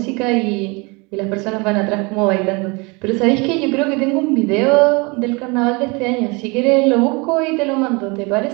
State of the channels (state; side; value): quieter; left; 28.1 dB